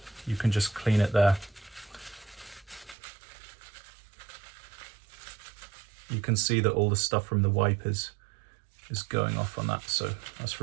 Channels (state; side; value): drops out; left; at 3.0 s